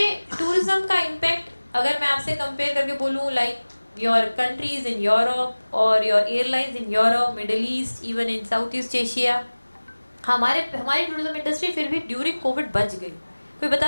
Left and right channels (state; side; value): inverted; both; correlation -1.00